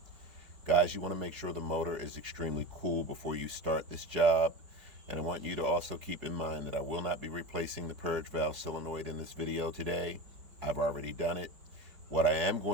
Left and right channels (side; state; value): left; late; 4.7 ms